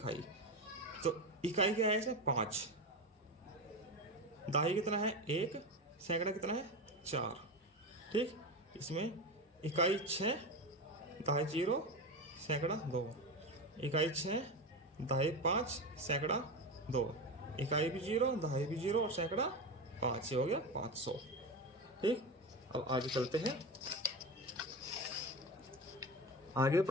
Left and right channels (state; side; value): normal; both; correlation 0.20